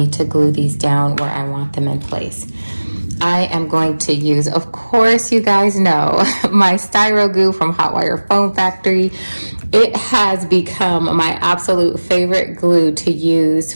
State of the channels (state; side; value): inverted; both; correlation -1.00